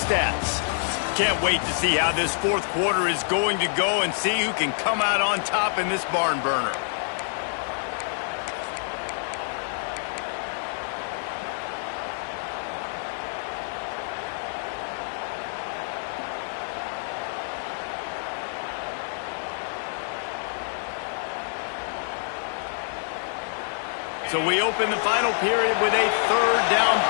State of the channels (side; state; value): right; silent; 60 dB below the other